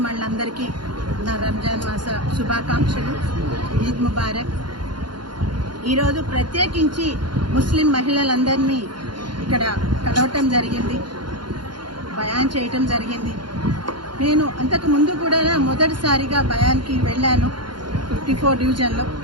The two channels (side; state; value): left; late; 0.71 ms